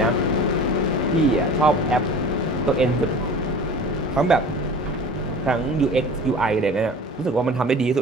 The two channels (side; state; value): both; normal; correlation 0.40